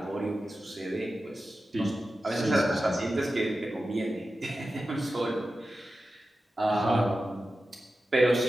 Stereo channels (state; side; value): normal; both; correlation 0.93